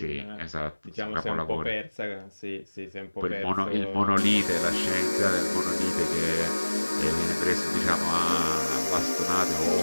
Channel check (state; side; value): inverted; both; correlation -1.00